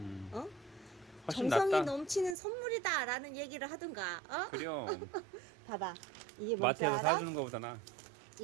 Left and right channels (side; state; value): left; drops out; at 2.4 s